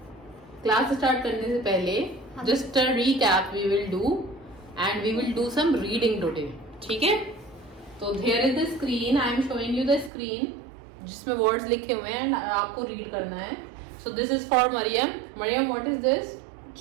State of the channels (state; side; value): drops out; left; at 10.1 s